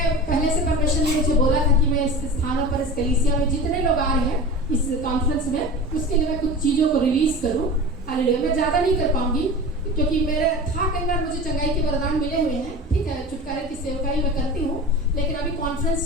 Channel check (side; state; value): both; normal; correlation 0.33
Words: पहले से परमेश्वर ने मुझे बोला था कि मैं इस स्थानों पर, इस कलीसिया में जितने लोग आ रहे हैं इस कॉन्फ्रेंस में, उसके लिए मैं कुछ चीज़ों को रिलीज करूँ। हालेलुया। मैं ज़्यादा नहीं कर पाऊंगी, क्योंकि मेरे था कई बार मुझे चंगाई के वरदान मिले हुए हैं, ठीक है, छुटकारे की सेवकाई मैं करती हूँ, लेकिन अभी कॉन्फ्रेंस